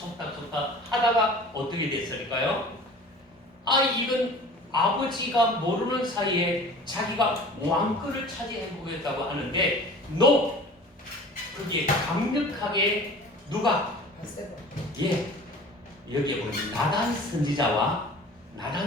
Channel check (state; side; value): normal; both; correlation 0.42